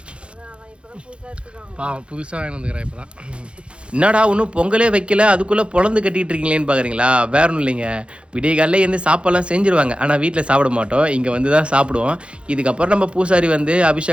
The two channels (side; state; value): left; late; 0.058 ms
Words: புதுசாக வாங்கி வந்துக்கிறேன் இப்போ தான். என்னடா ஒன்றும் பொங்கலே வைக்கல, அதுக்குள்ளே பொழந்து கட்டிகிட்டு இருக்கீங்களேன்னு பார்க்குறீங்களா? வேற ஒன்றும் இல்லைங்க, விடிய காலையில் இருந்து சாப்பாடெல்லாம் செஞ்சுருவாங்க. ஆனால் வீட்டில் சாப்பிட மாட்டோம், இங்கே வந்து தான் சாப்பிடுவோம். இதுக்கப்புறம் நம்ம பூசாரி வந்து